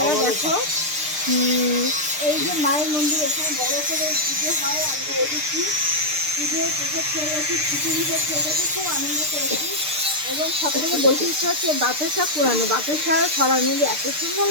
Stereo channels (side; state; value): left; late; 6.7 ms